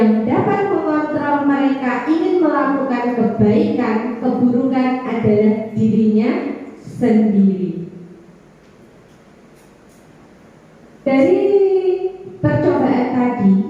dapat mengontrol mereka ingin melakukan kebaikan, keburukan adalah dirinya sendiri. Dari percobaan tadi,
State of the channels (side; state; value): both; identical; correlation 1.00